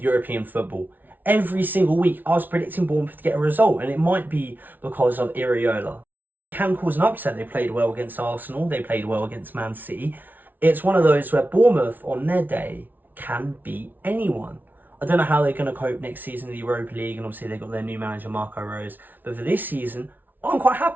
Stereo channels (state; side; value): late; left; 0.085 ms